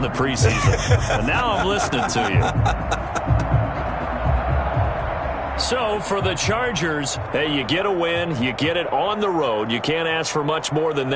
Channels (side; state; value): both; identical; correlation 1.00